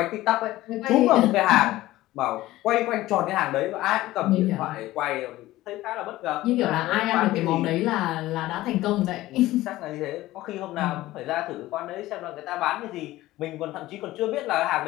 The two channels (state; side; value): quieter; right; 16.6 dB